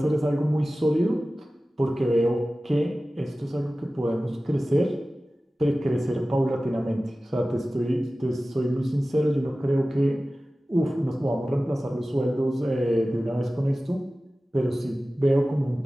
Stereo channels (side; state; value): both; normal; correlation 0.96